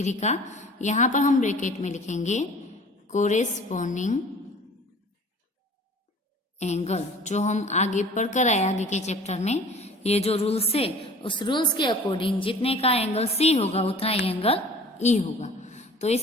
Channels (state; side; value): normal; both; correlation 0.46